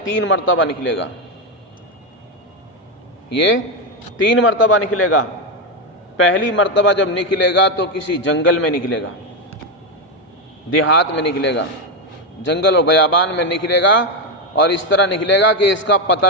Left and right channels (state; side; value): normal; both; correlation 0.08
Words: 3 مرتبہ نکلے گا، یہ 3 مرتبہ نکلے گا۔ پہلی مرتبہ جب نکلے گا تو کسی جنگل میں نکلے گا، دیہات میں نکلے گا، جنگل اور بیابان میں نکلے گا، اور اس طرح نکلے گا کہ اس کا